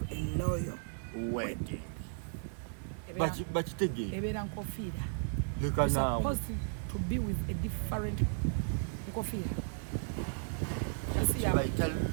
a loyal wedding bakitegeera ebeera nkofiira leka you're naawe supposed to be with a different nkofiira kasi yawe bayita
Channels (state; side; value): silent; left; digital silence